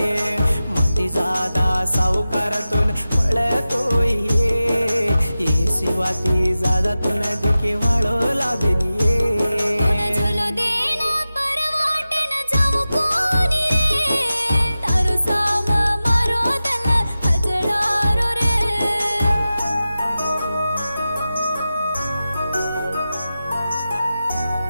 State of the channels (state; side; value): inverted; both; correlation -0.94